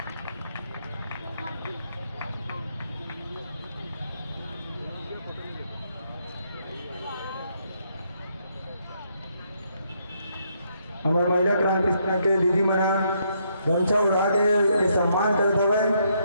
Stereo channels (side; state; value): both; inverted; correlation -0.74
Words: हमारे महिला क्रांति सेना के दीदी मना गमछा उड़ा के ये सम्मान करते हुए